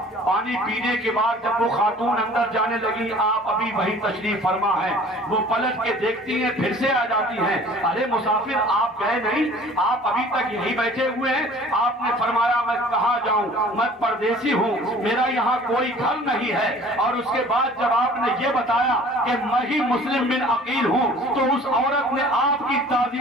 پانی پینے کے بعد جب وہ خاتون اندر جانے لگی آپ ابھی وہی تشریف فرما ہے. وہ پلٹ کے دیکھتی ہیں پھر سے آ جاتی ہیں. ارے مسافر آپ گئے نہیں آپ ابھی تک یہی بیٹھے ہوئے ہیں. آپ نے فرمایا میں کہاں جاؤں میں پردیسی ہوں میرا یہاں کوئی گھر نہیں ہے. اور اس کے بعد جب آپ نے یہ بتایا کہ میں ہی مسلم بن عقیل ہوں تو اس عورت نے آپ کی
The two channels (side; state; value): both; normal; correlation 0.49